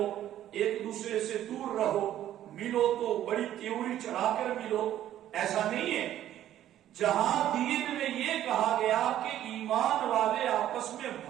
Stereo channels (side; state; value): left; quieter; 12.1 dB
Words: ایک دوسرے سے دور رہو، ملو تو بڑی تیوری چڑھا کر ملو. ایسا نہیں ہے. جہاں دین میں یہ کہا گیا کہ ایمان والے آپس میں